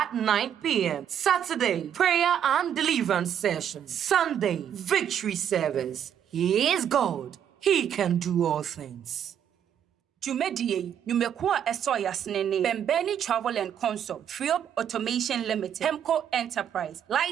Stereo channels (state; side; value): quieter; left; 9.2 dB